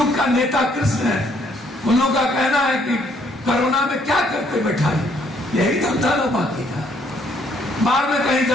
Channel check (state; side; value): normal; both; correlation 0.67